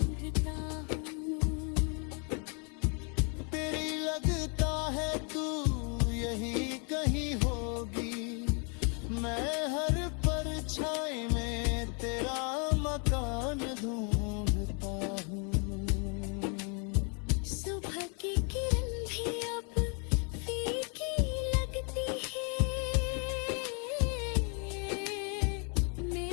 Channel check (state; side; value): quieter; right; 37.4 dB